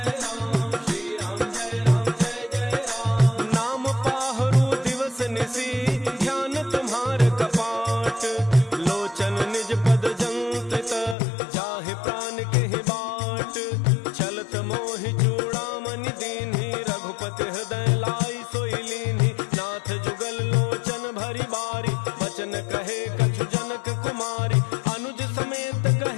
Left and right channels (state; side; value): drops out; right; at 11.2 s